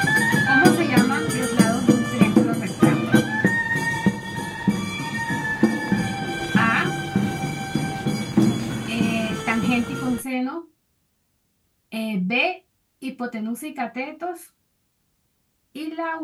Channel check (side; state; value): both; identical; correlation 1.00